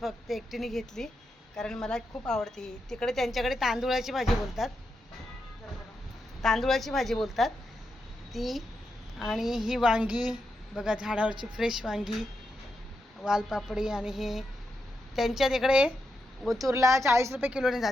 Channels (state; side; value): normal; both; correlation 0.85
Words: एकटीने घेतली कारण मला खूप आवडते ही. तिकडे त्यांच्याकडे तांदूळाची भाजी बोलतात, तांदूळाची भाजी बोलतात ती. आणि ही वांगी बघा, झाडावरची फ्रेश वांगी, वालपापडी. आणि हे त्यांच्या तिकडे ओतूरला 40 रुपये किलोने